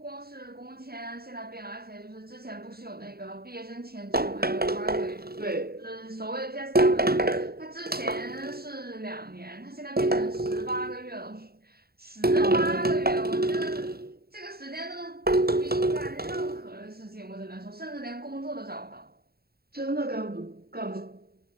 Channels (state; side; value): late; left; 0.45 ms